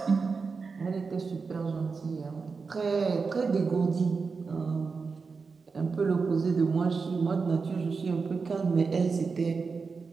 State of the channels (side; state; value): left; quieter; 4.8 dB